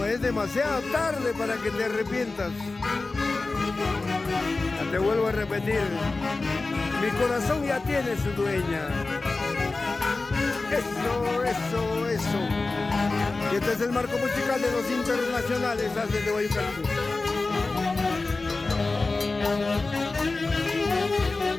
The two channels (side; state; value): right; quieter; 3.5 dB